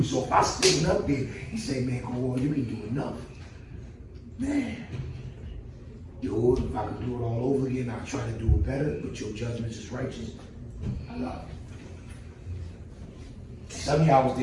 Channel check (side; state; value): both; identical; correlation 1.00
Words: So if I stand up there and say, man, come on, you ain't doing enough. Man, Yahuwah, if I could do it all over again, I'll try to do it better, but your judgment is righteous. I love it. Some of y'all was